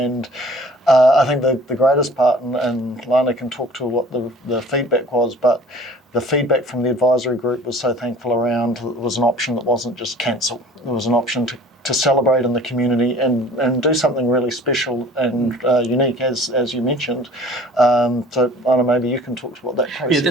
I think the greatest part, and Lana can talk to what the feedback was, but the feedback from the advisory group was so thankful around it was an option that wasn't just cancel. It was an option to celebrate in the community and do something really special and unique, as you mentioned. So, Anna, maybe you can talk to what that process was. Yeah,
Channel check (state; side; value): normal; both; correlation 0.48